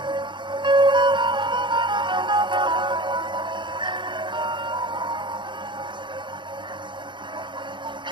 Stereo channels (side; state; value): left; late; 0.23 ms